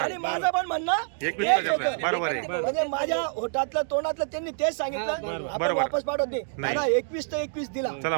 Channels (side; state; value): left; silent; digital silence